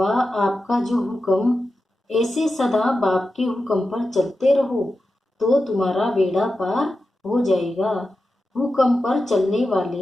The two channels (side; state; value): both; normal; correlation 0.91